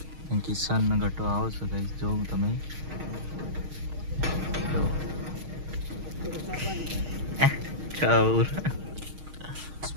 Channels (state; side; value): late; left; 6.4 ms